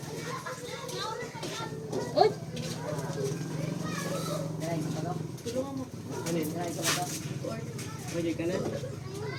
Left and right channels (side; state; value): both; identical; correlation 1.00